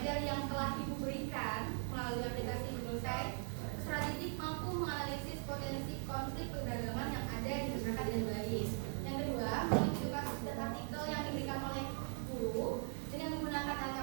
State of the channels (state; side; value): silent; left; 51 dB below the other